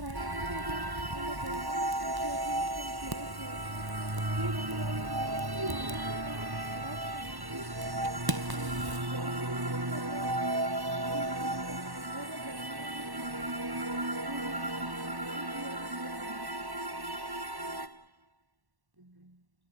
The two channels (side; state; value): left; late; 1.1 ms